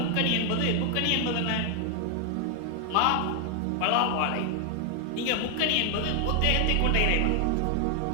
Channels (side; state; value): both; different; correlation 0.00